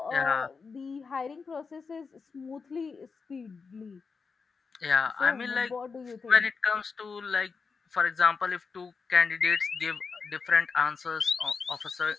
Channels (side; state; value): right; quieter; 5.0 dB